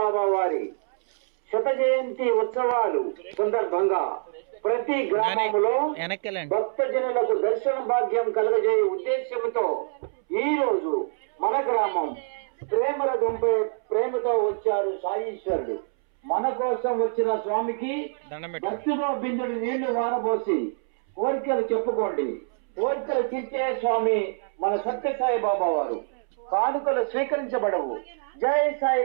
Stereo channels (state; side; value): silent; left; 61 dB below the other